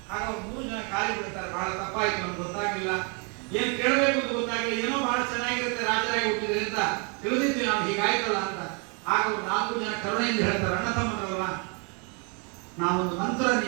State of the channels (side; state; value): left; quieter; 35.0 dB